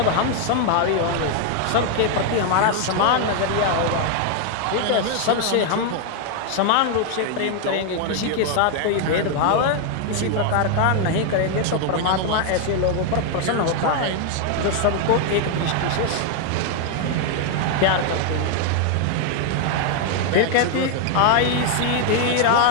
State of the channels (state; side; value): different; both; correlation 0.00